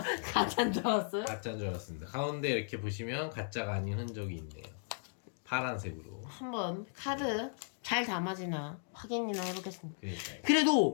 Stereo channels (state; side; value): silent; right; digital silence